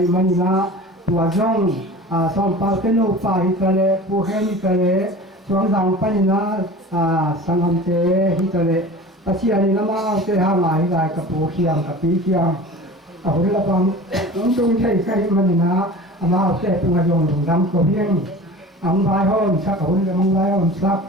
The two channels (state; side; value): normal; both; correlation 0.38